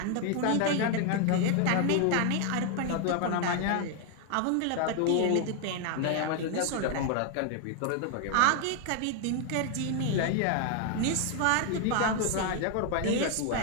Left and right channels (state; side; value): different; both; correlation 0.00